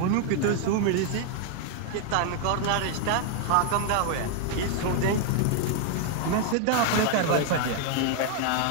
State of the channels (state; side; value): different; both; correlation 0.00